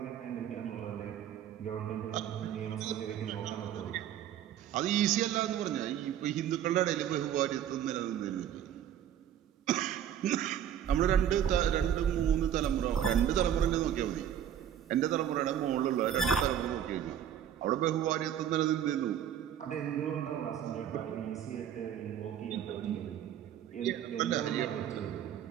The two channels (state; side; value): quieter; left; 10.0 dB